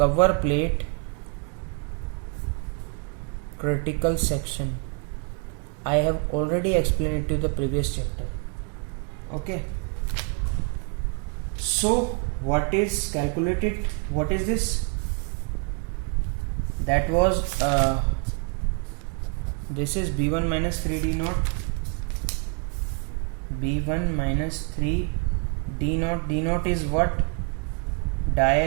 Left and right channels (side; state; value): left; quieter; 37.7 dB